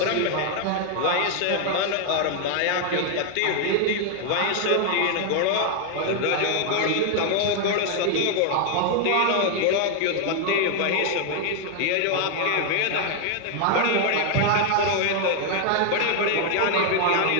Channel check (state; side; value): different; both; correlation 0.00